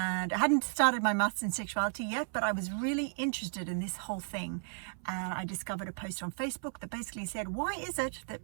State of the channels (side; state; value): left; silent; 55 dB below the other